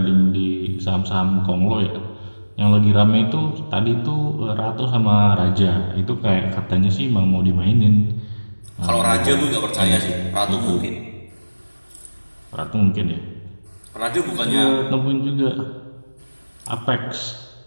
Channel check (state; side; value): inverted; both; correlation -1.00